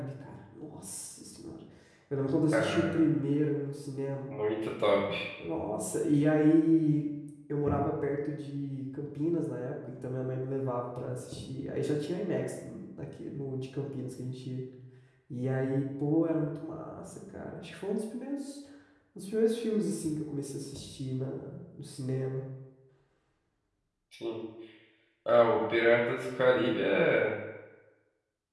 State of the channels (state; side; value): identical; both; correlation 1.00